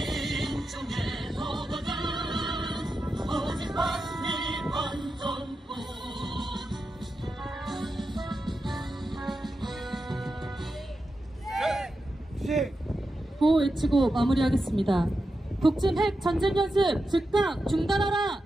도전은 오직 구호 외치고 마무리하겠습니다. 북침 핵 전쟁 연습 즉각 중단하라!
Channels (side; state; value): both; normal; correlation 0.89